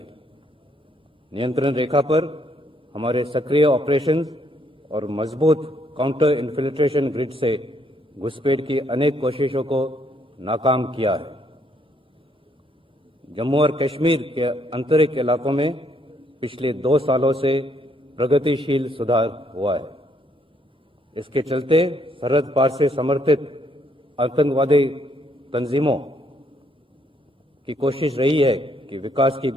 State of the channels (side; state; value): both; normal; correlation 0.71